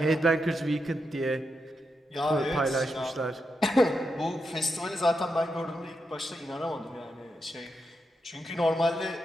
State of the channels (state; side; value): normal; both; correlation 0.85